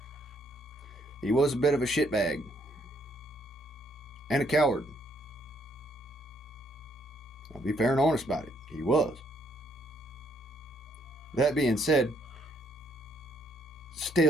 He was a bit of a shitbag. And a coward. I'll be fair and honest about it. He was. That being said,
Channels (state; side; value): normal; both; correlation 0.70